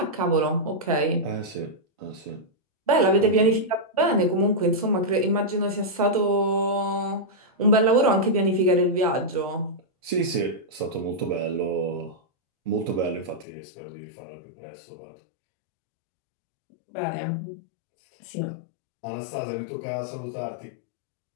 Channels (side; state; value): right; drops out; at 13.5 s